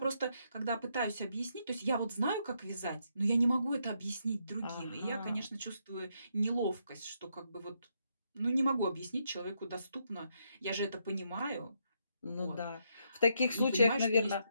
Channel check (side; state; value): both; inverted; correlation -0.77